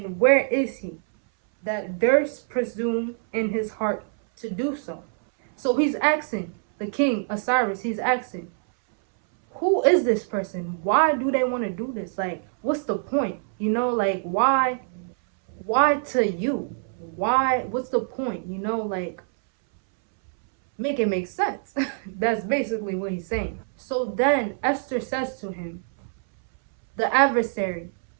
where is he, that durst presume in his heart to do so?" So he's asking, the king Osiris, he's asking, who is this person? Why do they want to do this? Like, what's the point? You know, like, why to you? Why, what's the point? You know, like, make it make sense. That's basically what he's saying. So then Esther says to him, "The adversary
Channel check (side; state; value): left; silent; 62 dB below the other